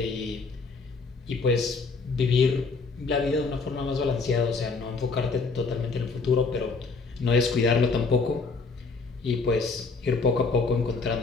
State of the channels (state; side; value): quieter; right; 4.3 dB